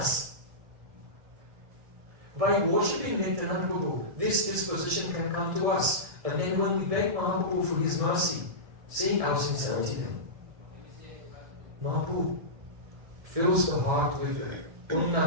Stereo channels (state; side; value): late; left; 1.9 ms